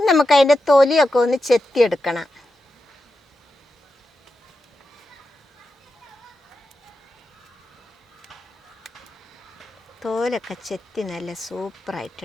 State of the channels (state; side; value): normal; both; correlation 0.89